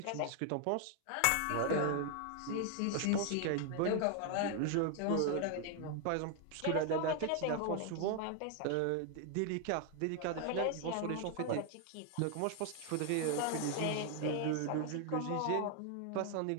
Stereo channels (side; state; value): both; different; correlation 0.00